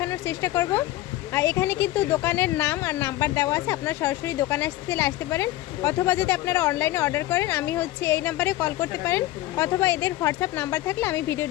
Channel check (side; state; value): right; quieter; 16.1 dB